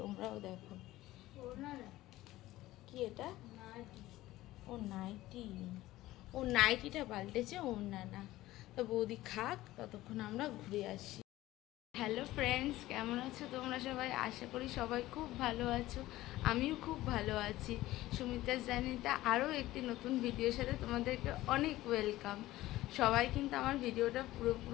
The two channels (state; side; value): quieter; right; 16.5 dB